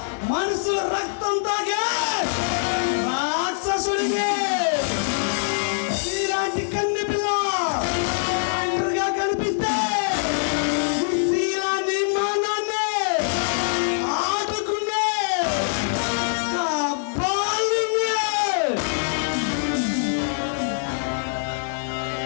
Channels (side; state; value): right; silent; 59 dB below the other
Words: మనసు రక్తం తాగే రాక్షసుడిని ఇలాంటి కన్నె పిల్ల ఒంటరిగా కనిపిస్తే శీలాన్ని మానాన్ని ఆడుకునే